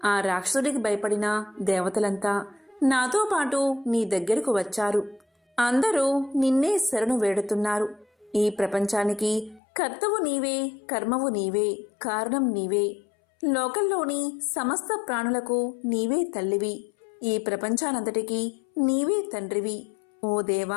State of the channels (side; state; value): right; drops out; at 9.6 s